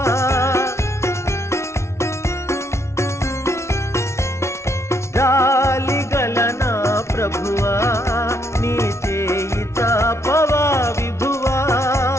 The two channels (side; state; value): right; late; 0.13 ms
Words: జాలిగల నా ప్రభువా నీ చేయి తాపవా విభువా.